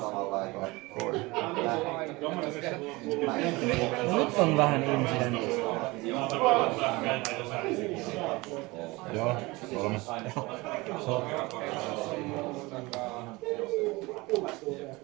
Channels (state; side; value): quieter; left; 22.9 dB